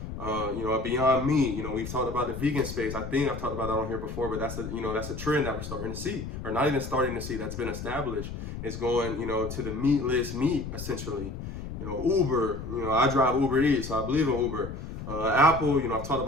A Beyond Meat, we've talked about the vegan space. I think I've talked about that on here before, but that's a trend that we're starting to see, or not even starting to see, that's been established. It's going, to the meatless meat, essentially. Uber, I drive Uber Eats, so I believe in Uber. Apple, I've talked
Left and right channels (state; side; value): noise; left; rumble, 8 dB below the sound